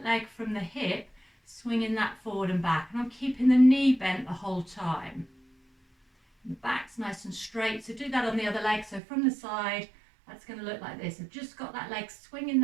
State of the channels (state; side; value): drops out; left; at 9.0 s